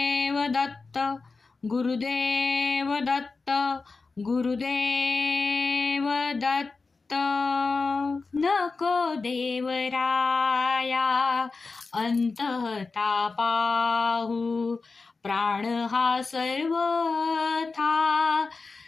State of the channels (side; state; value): right; quieter; 4.1 dB